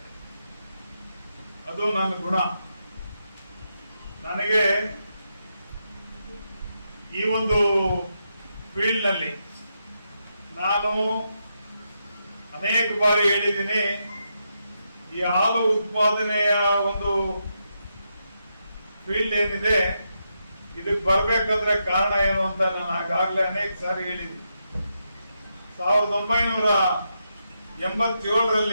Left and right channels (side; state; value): both; inverted; correlation -0.83